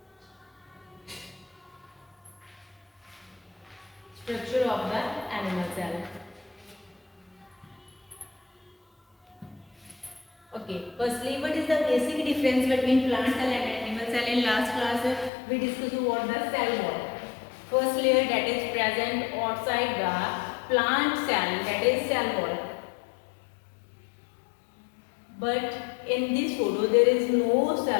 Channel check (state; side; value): drops out; right; at 15.3 s